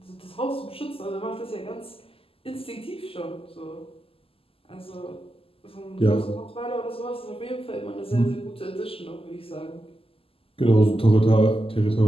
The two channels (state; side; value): late; right; 0.27 ms